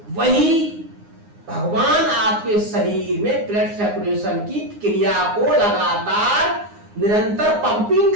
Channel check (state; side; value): late; left; 9.7 ms